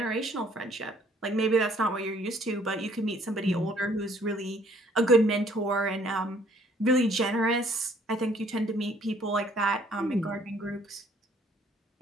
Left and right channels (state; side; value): normal; both; correlation 0.61